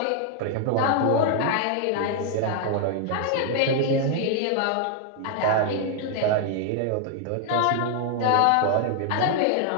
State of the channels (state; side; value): different; both; correlation 0.00